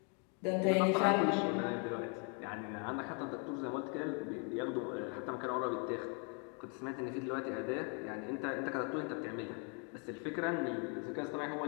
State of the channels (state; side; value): quieter; right; 37.4 dB